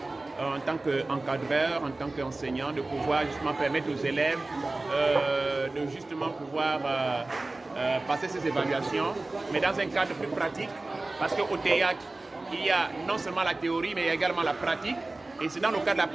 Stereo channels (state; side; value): quieter; left; 3.1 dB